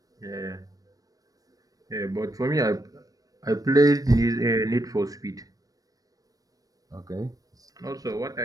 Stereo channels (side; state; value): left; late; 0.18 ms